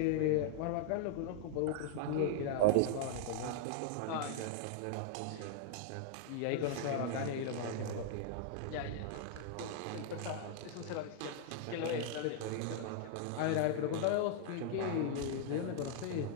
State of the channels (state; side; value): different; both; correlation -0.01